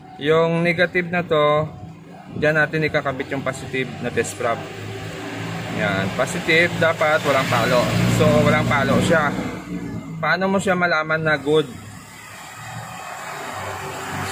Yung negative na to, diyan natin ikakabit yung positive na test probe. Yan, positive dapat walang palo. So walang palo siya. Paano mo siya malaman na good?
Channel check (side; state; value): both; identical; correlation 1.00